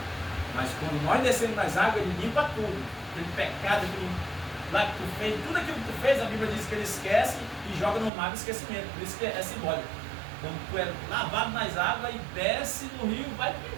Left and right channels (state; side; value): drops out; left; at 8.1 s